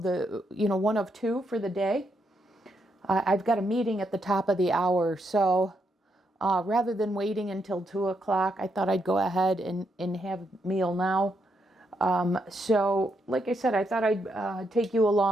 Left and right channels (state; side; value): normal; both; correlation 0.79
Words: the one of 2 for the day. I've got a meeting at the top of the hour, so rather than waiting until 2 o'clock, I thought I'd go ahead and have a meal now. So like I said, I thought I'd take you